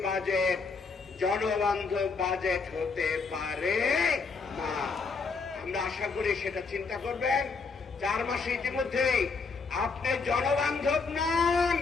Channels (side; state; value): right; quieter; 4.6 dB